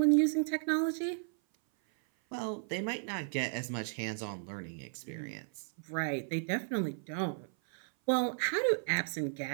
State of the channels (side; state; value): left; silent; 55 dB below the other